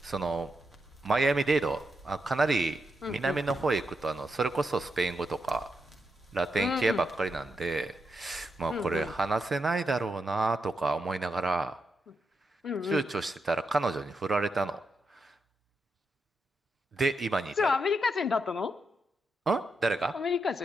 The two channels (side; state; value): both; normal; correlation 0.84